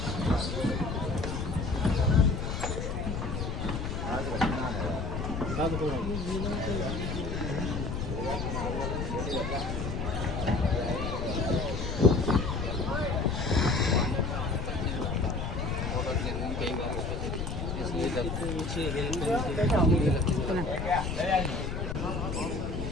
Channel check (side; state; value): left; noise; rumble, 3 dB below the sound